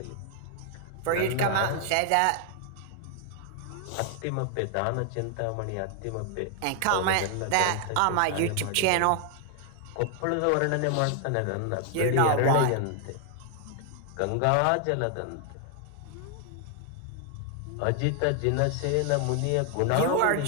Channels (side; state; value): both; different; correlation 0.00